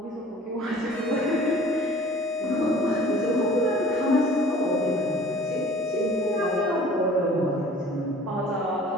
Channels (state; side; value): normal; both; correlation 0.48